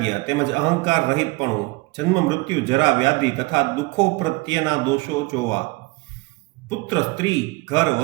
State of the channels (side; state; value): left; quieter; 24.8 dB